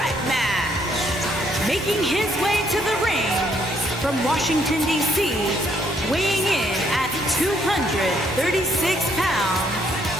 match. Making his way to the ring from Washington, D.C., weighing in at 236 pounds,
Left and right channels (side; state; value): both; normal; correlation 0.70